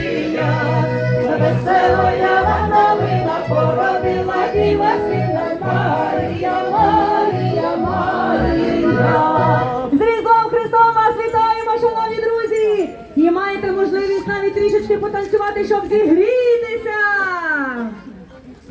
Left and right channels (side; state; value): both; identical; correlation 1.00